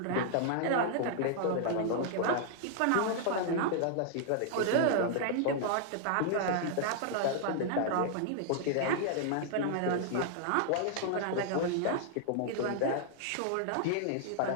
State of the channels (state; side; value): different; both; correlation -0.01